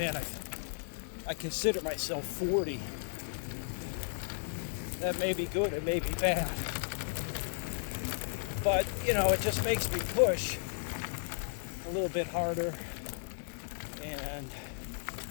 I consider myself 40. That may be good, it may be bad. But, it just makes me push a little bit harder and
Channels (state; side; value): silent; right; digital silence